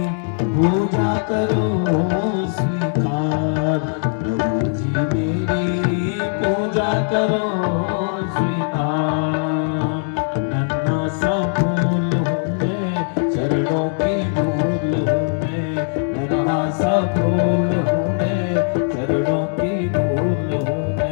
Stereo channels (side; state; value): right; silent; digital silence